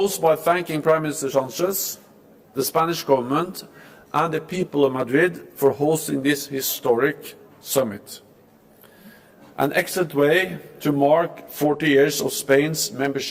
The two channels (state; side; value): identical; both; correlation 1.00